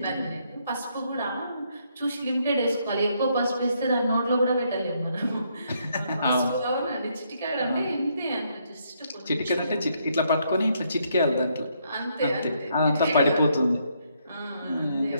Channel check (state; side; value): inverted; both; correlation -0.73